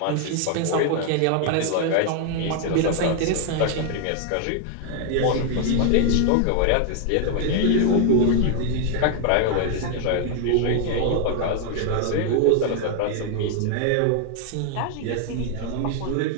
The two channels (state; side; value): different; both; correlation 0.00